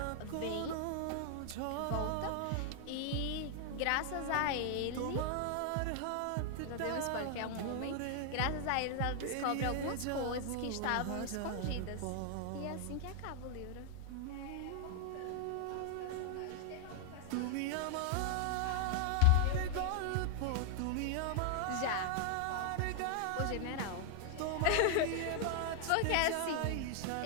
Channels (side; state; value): both; different; correlation 0.00